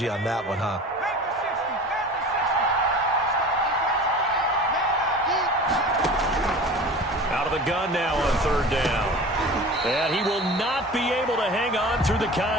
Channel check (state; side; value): normal; both; correlation 0.38